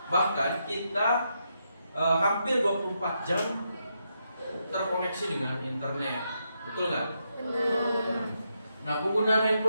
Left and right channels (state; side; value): inverted; both; correlation -0.82